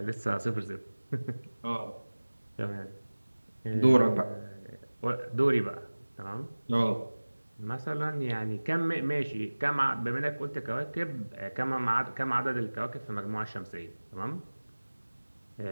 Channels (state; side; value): inverted; both; correlation -1.00